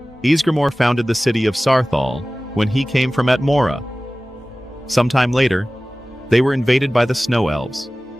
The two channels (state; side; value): normal; both; correlation 0.97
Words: Ysgramor founded the city of Sarthal when he came from Atmora. Sometime later, they were invaded by the Snow Elves,